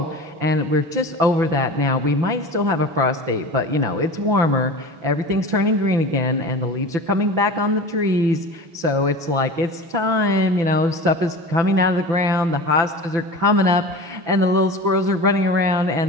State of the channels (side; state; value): left; late; 6.0 ms